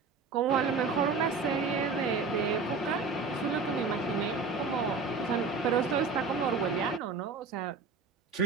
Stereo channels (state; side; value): quieter; left; 4.4 dB